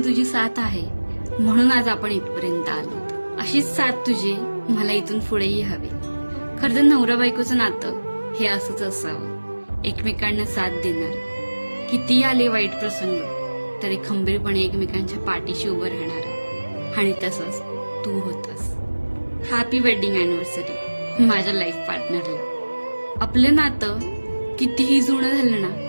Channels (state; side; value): inverted; both; correlation -1.00